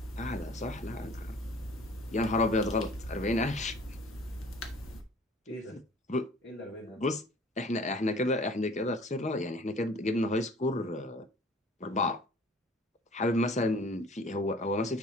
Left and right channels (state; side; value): normal; both; correlation 0.50